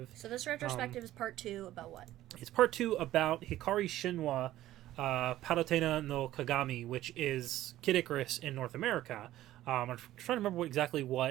So this retrospective is part 2 about what? It's part 2 about Hikari Shinwa Palutena no Kagami, which is Kid Icarus in North America. I'm trying to remember exactly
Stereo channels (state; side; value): quieter; left; 14.4 dB